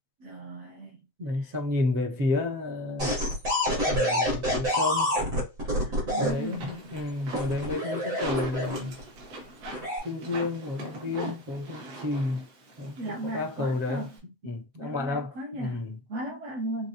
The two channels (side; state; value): left; late; 7.9 ms